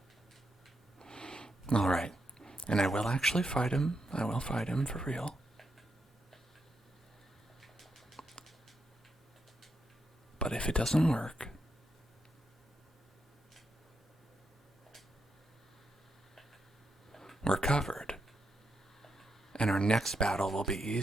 Alright. And I will actually fight him. I will fight him for real. But if it doesn't work, we're covered. And our next battle will be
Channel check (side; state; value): both; normal; correlation 0.83